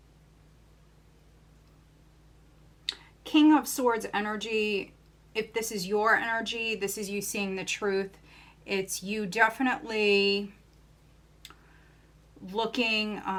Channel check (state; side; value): identical; both; correlation 1.00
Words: King of Swords energy, if this is your energy, this is you seeing the truth. It's you definitely looking